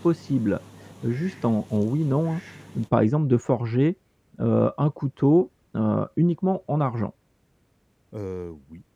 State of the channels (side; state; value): both; identical; correlation 1.00